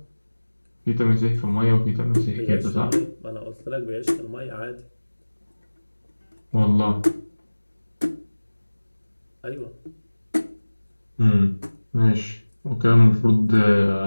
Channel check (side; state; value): both; inverted; correlation -1.00